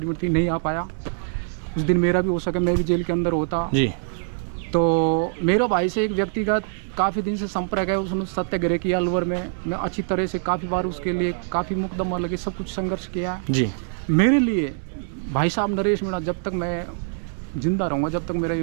थी, नहीं आ पाया। उस दिन मेरा भी हो सके, मैं भी जेल के अंदर होता। जी तो मेरे भाई से एक व्यक्तिगत काफ़ी दिन से संपर्क है, उसने सत्याग्रह किया अलवर में। मैं अच्छी तरह से काफ़ी बार उसके लिए काफ़ी मुकदमा लगे, सब कुछ संघर्ष किया। जी मेरे लिए भाई साहब नरेश मीणा जब तक मैं जिंदा रहूँगा, जब तक मेरा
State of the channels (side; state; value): left; silent; digital silence